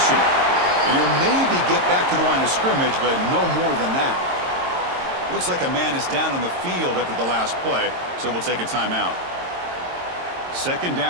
And he'll maybe get back to the line of scrimmage, but no more than that. Looks like a man is down on the field after the last play, so we'll take a timeout. Second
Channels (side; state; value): left; late; 22 ms